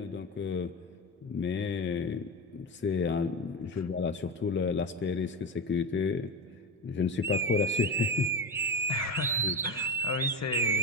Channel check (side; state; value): both; normal; correlation 0.20